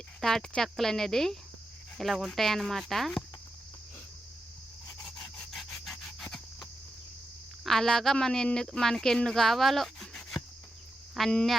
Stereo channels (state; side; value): normal; both; correlation 0.88